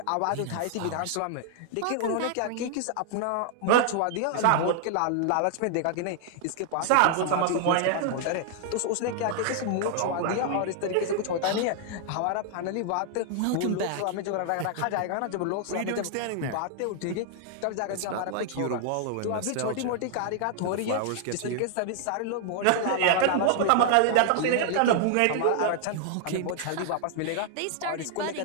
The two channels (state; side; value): different; both; correlation 0.00